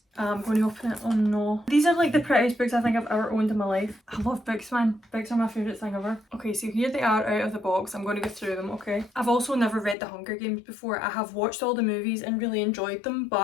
I'm going to open it. Oh no. These are like the prettiest books I think I've ever owned in my life. I love books, man. Books are my favourite thing ever. Okay, so here they are out of the box. I'm going to go through them, okay? I've also never read The Hunger Games before. I have watched all the movies and really enjoyed them,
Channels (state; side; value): drops out; right; at 10.0 s